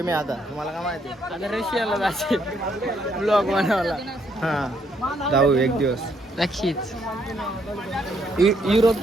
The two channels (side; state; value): both; normal; correlation 0.72